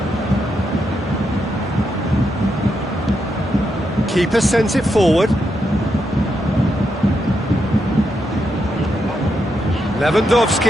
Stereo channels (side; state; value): both; normal; correlation 0.82